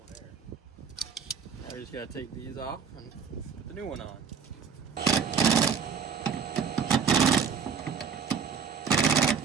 air. Now we just gotta take these off and put the new one on.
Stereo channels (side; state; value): left; quieter; 6.4 dB